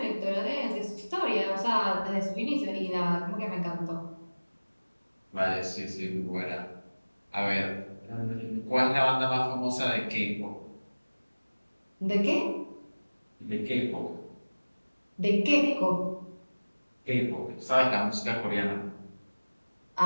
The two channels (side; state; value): both; inverted; correlation -1.00